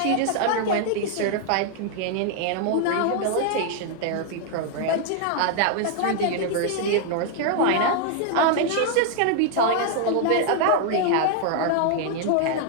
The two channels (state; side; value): different; both; correlation 0.00